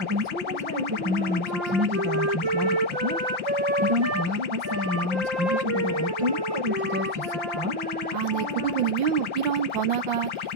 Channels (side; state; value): left; late; 5.7 ms